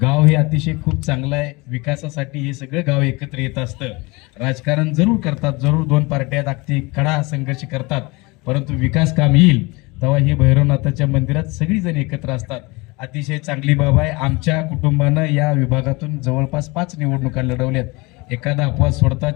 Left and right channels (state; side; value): quieter; right; 25.1 dB